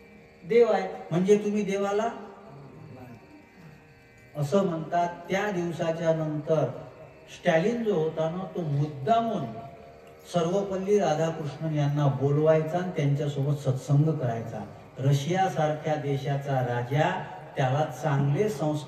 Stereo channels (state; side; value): identical; both; correlation 1.00